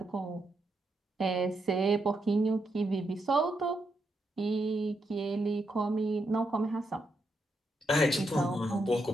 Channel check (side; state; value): both; normal; correlation 0.82